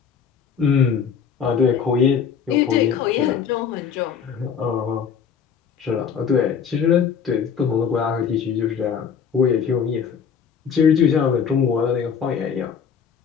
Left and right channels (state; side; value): quieter; right; 7.0 dB